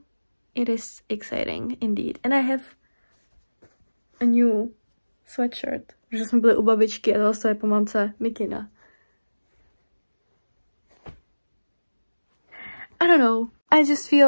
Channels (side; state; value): both; inverted; correlation -1.00